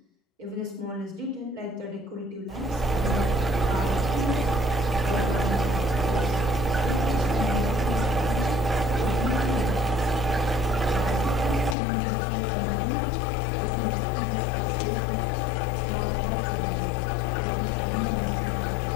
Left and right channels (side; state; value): right; drops out; at 11.8 s